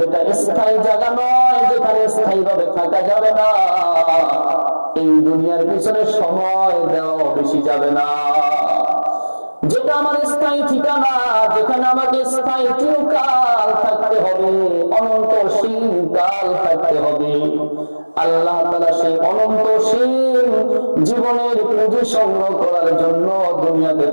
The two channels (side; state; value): both; inverted; correlation -1.00